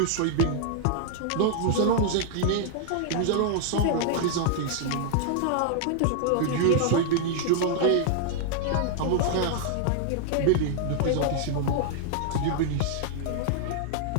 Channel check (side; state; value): both; different; correlation -0.01